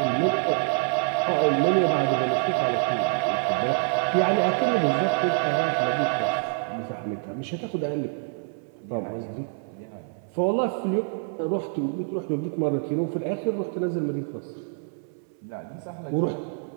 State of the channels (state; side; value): silent; left; 61 dB below the other